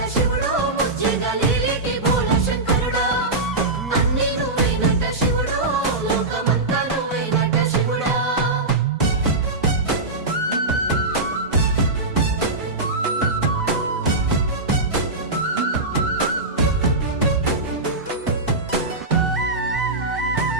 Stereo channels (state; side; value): quieter; left; 3.0 dB